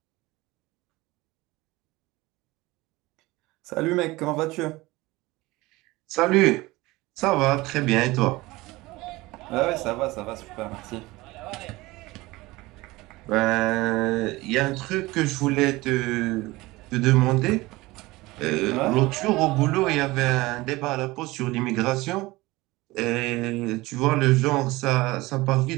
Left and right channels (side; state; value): left; quieter; 20.5 dB